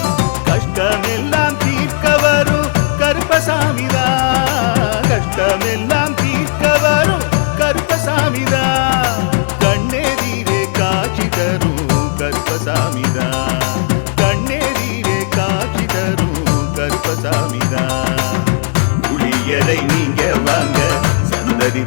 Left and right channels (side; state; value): right; silent; digital silence